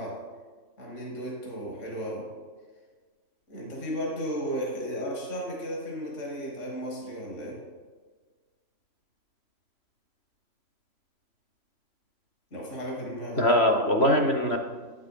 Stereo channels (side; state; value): right; late; 3.0 ms